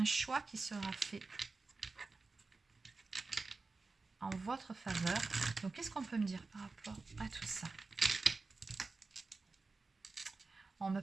choix qui sera fait en votre faveur. Donc, qu'est-ce qu'on peut me dire par rapport à tout ça? On me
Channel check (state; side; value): quieter; left; 3.9 dB